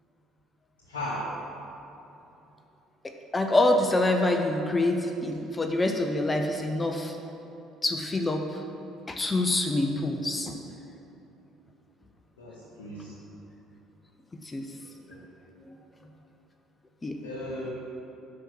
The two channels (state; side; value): normal; both; correlation 0.78